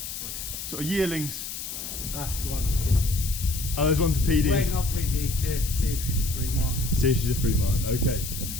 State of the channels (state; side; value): noise; left; hiss, 7 dB below the sound